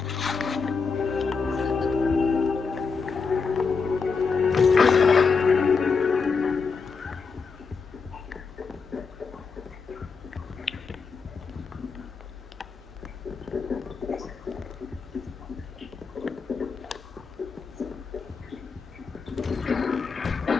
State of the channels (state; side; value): quieter; right; 5.1 dB